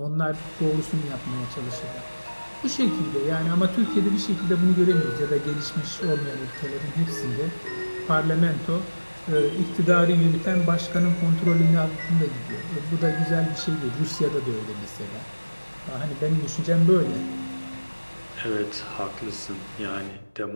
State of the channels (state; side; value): inverted; both; correlation -1.00